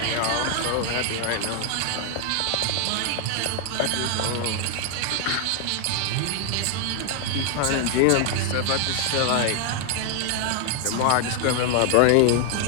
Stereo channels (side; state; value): both; different; correlation 0.00